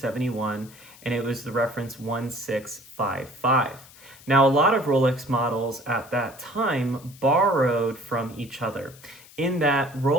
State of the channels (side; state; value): left; noise; hiss, 22 dB below the sound